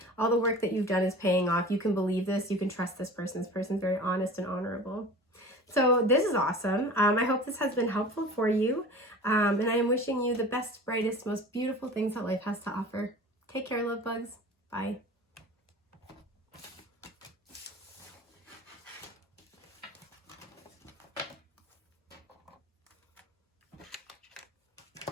all the work that you've done is paying off. You can believe this. You can trust this person. This person's very honest and honorable. So this is awesome. I hope this has been helpful for you. And I am wishing you the best, brightest, most beautiful things that life has to offer. Take care, love bugs. Bye.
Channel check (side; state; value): both; normal; correlation 0.38